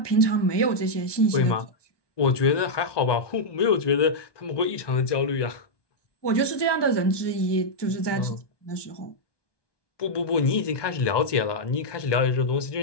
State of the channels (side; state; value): right; late; 1.2 ms